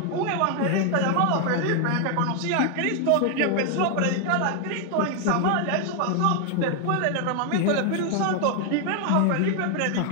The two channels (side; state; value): both; different; correlation 0.00